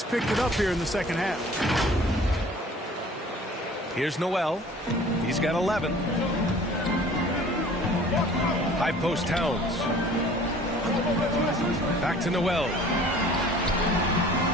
picked it up here in the second half. Here's Noel. He's got 11. High post Towns. Back to Noel.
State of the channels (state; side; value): normal; both; correlation 0.49